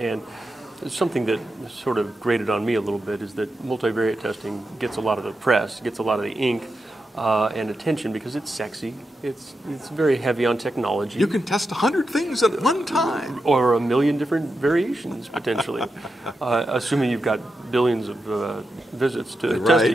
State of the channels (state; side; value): normal; both; correlation 0.88